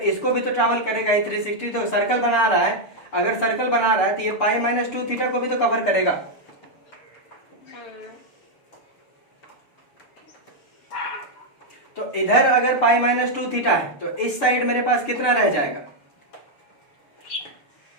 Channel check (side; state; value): right; late; 6.7 ms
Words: इसको भी तो ट्रैवल करेगा ही 360, तो सर्कल बना रहा है, अगर सर्कल बना रहा है तो ये पाई माइनस 2 थीटा को भी तो कवर करेगा। तो इधर अगर पाई माइनस 2 थीटा है तो इस साइड मेरे पास कितना रह जाएगा,